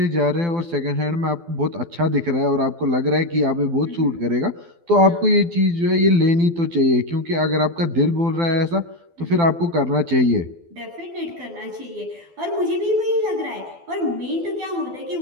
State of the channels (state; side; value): late; left; 12 ms